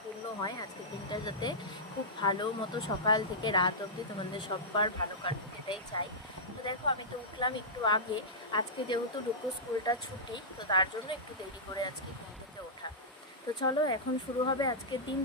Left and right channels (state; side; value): normal; both; correlation -0.13